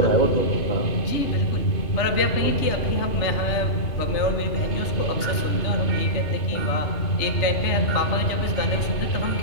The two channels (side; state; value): right; late; 3.3 ms